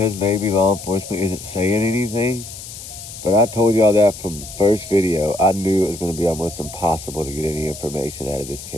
maybe law enforcement isn't saying anything. But I told y'all that from the first video. I knew it was going to be almost impossible to get any information out of this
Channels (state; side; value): noise; left; hiss, 13 dB below the sound